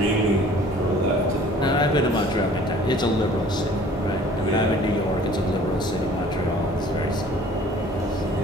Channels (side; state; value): both; normal; correlation 0.51